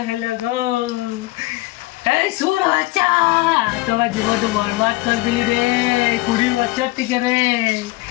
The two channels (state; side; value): quieter; right; 20.1 dB